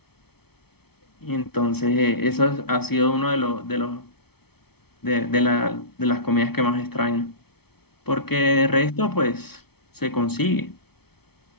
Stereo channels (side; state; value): right; late; 0.96 ms